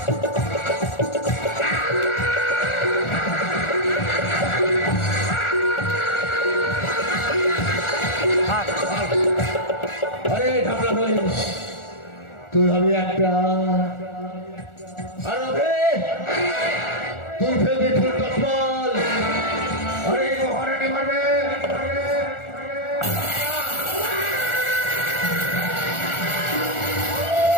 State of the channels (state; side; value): late; right; 1.4 ms